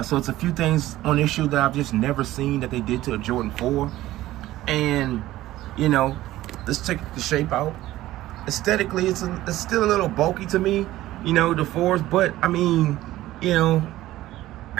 So it's a few things on this shoe that I've just never seen that they did to a Jordan 4. And, you know, let's check the shape out. Aesthetically, it's still a little bulky to me, you know, the 4s. But, I mean, you know,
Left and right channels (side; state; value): left; quieter; 15.6 dB